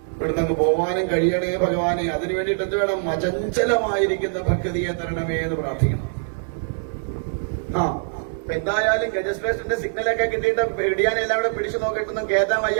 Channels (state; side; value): silent; left; digital silence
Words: ഇവിടുന്ന് അങ്ങ് പോവാനും കഴിയണേ ഭഗവാനെ. അതിനു വേണ്ടിയിട്ട് എന്ത് വേണം, അചഞ്ചലമായിരിക്കുന്ന ഭക്തിയെ തരണമേ എന്ന് പ്രാർത്ഥിക്കണം. അപ്പൊ എന്തായാലും ഗജശ്രേഷ്ഠന്റെ സിഗ്നലൊക്കെ കിട്ടിയിട്ട് പിടിയാനെ എല്ലാം കൂടെ പിടിച്ചു നോക്കിയിട്ടൊന്നും കേറ്റാൻ